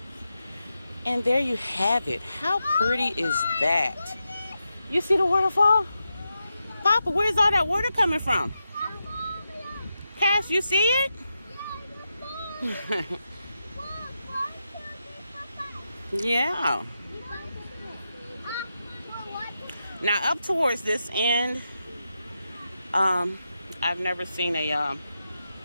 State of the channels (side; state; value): both; inverted; correlation -0.88